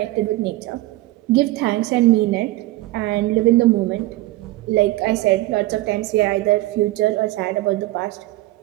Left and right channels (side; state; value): left; quieter; 18.0 dB